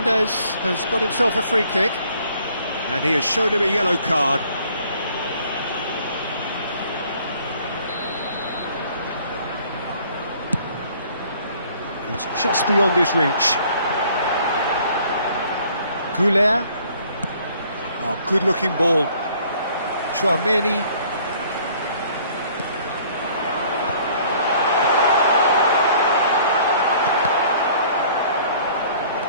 has got himself a free kick, and he has shown him a yellow card. It's just beyond his reach. Goulet. Oh, good-looking ball. Chouameni.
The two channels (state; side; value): inverted; both; correlation -0.57